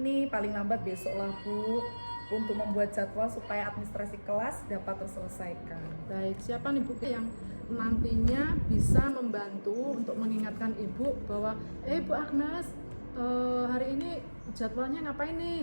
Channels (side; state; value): both; inverted; correlation -1.00